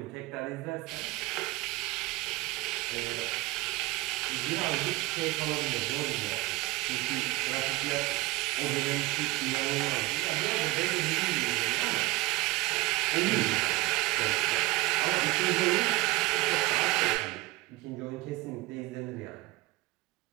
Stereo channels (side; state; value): left; quieter; 20.1 dB